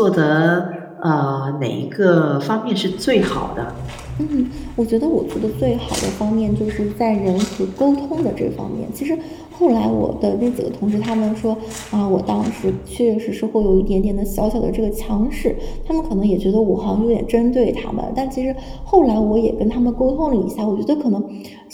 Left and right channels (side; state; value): both; identical; correlation 1.00